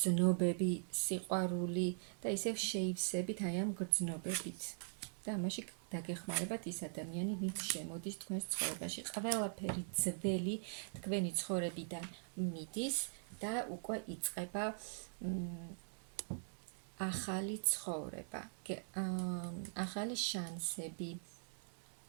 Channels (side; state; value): left; silent; digital silence